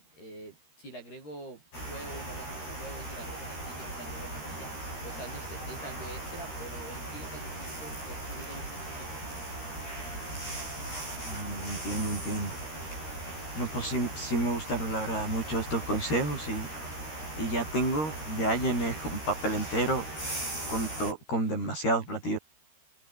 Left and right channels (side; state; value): right; late; 13 ms